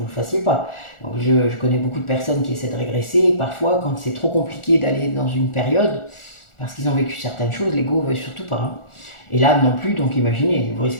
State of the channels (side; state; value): right; late; 1.4 ms